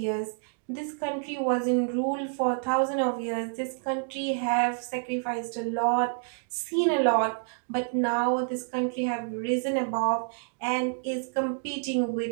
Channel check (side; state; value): left; silent; digital silence